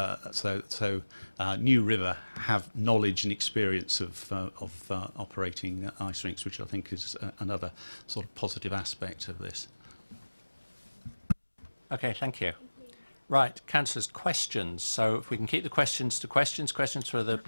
New River have knowledge and experience of operating ice rinks, which I think is another sort of positive aspect of this. Okay, thank you. Right, councillors, questions. So if we can keep the questions to questions for the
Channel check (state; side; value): inverted; both; correlation -1.00